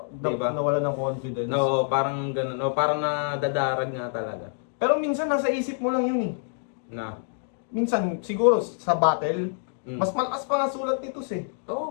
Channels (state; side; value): silent; right; digital silence